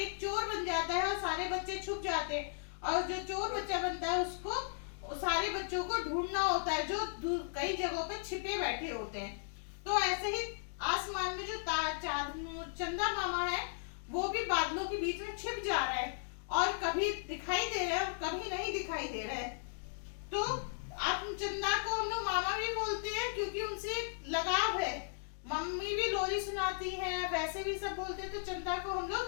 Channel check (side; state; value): right; silent; digital silence